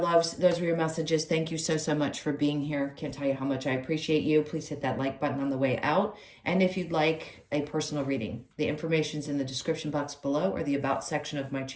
those were your messages. Thank you so, so much for being here. Can't tell you how much I appreciate you. Please hit that like button on the way out. And if you'd like a personal reading, the information's in the description box below or the About section of my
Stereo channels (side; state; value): both; identical; correlation 1.00